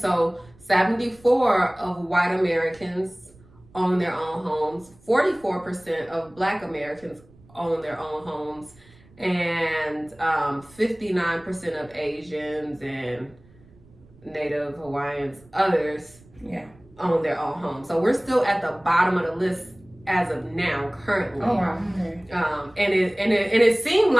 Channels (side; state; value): right; noise; rumble, 27 dB below the sound